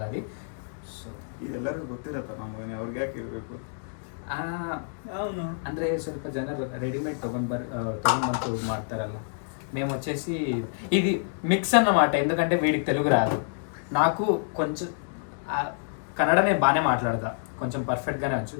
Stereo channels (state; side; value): silent; right; digital silence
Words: అది. ಸೊ ಇದೆಲ್ಲರಿಗೂ ಗೊತ್ತಿರತ್ತ ನಮಗೆ ಅವ್ರಿಗೆ ಯಾಕೆ ಇರಬೇಕು? అవును, ಅಂದರೆ ಸ್ವಲ್ಪ ಜನರು రెడీమేడ్ తಗೊಂಡ್ಬಂತು ಮಾಡ್ತಾರಲ್ಲ. మేము వచ్చేసి ఇది మిక్స్ అన్నమాట. ఎందుకంటే వీడికి తెలుగు రాదు, నాకు కొంచెం కన్నడనే బాగానే మాట్లాడతా, కొంచెం పర్ఫెక్ట్గానే వచ్చు.